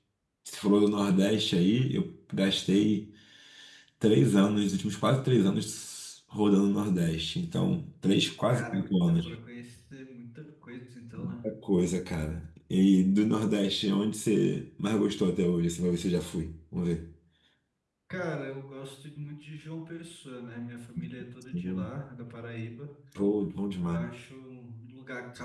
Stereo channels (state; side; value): identical; both; correlation 1.00